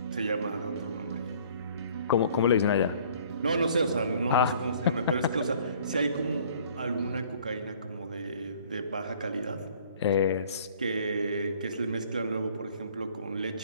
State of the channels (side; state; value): both; inverted; correlation -0.55